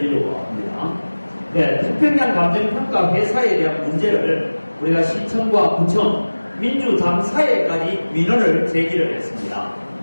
합니다. 네, 태평양 감정평가 회사에 대한 문제를 우리가 시청과 구청, 민주당사회까지 민원을 제기를 했습니다.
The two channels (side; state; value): both; inverted; correlation -1.00